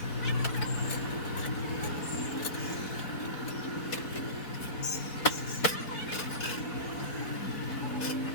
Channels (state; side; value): late; right; 4.4 ms